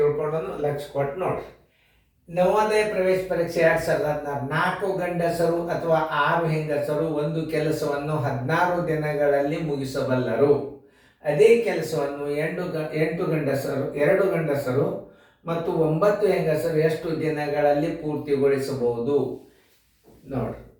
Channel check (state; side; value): identical; both; correlation 1.00